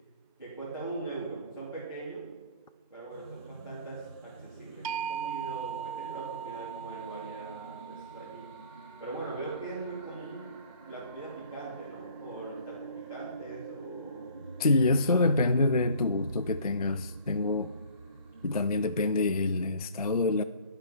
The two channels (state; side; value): inverted; both; correlation -0.53